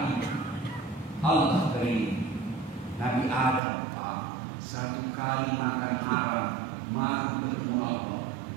Allah beri Adam, Pak, satu kali makan haram, malu ketemu Allah.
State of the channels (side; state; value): left; drops out; at 3.6 s